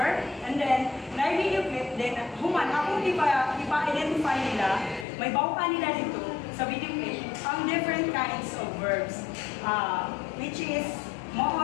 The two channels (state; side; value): drops out; right; at 5.1 s